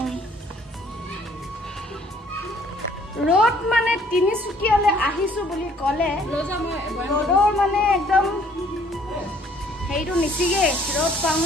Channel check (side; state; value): both; normal; correlation 0.60